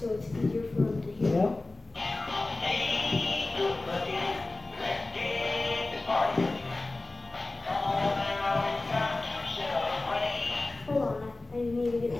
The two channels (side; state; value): right; quieter; 3.1 dB